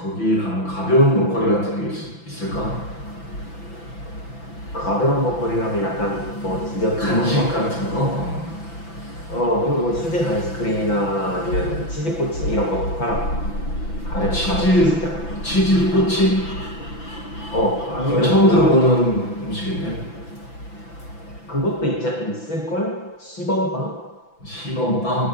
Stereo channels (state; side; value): late; right; 5.9 ms